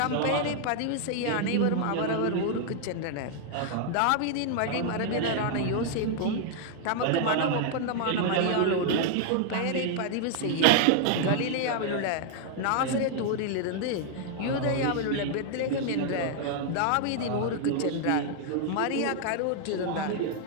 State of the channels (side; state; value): both; different; correlation 0.00